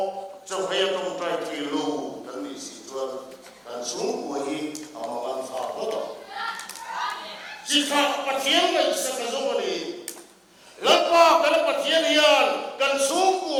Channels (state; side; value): identical; both; correlation 1.00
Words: cho hay tông trai thì lu kan ni si chuan kan sung ko hi amagan fa ko to chỉ kha pathian ngai sa ka zo ni lapa kan pathian hian kan sung